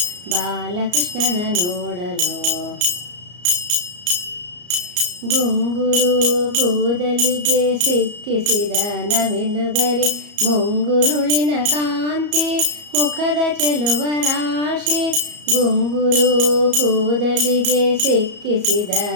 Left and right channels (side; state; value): left; late; 34 ms